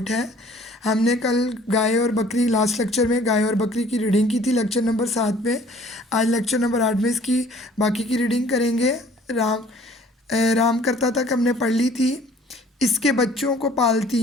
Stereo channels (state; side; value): normal; both; correlation 0.54